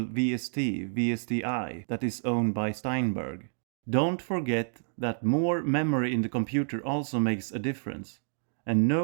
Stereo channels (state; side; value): silent; left; digital silence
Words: VST, VSTi, that is owned by Steinberg. Don't forget that more memory in the computer also makes a difference. And